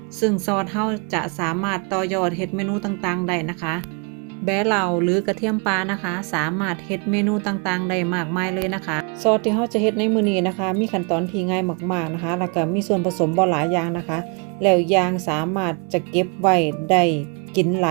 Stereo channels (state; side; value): quieter; left; 35.2 dB